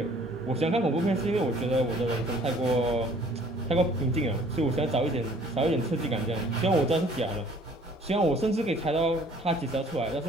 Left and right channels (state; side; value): normal; both; correlation 0.56